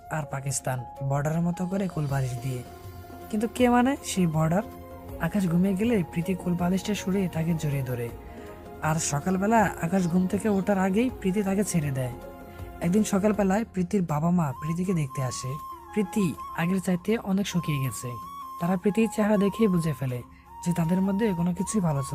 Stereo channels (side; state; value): both; identical; correlation 1.00